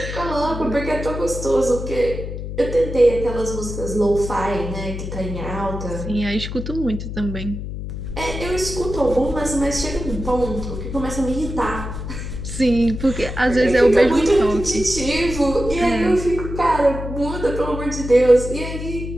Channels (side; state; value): left; noise; hum, 7 dB below the sound